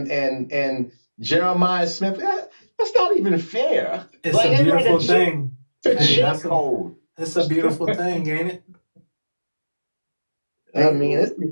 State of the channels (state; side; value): inverted; both; correlation -1.00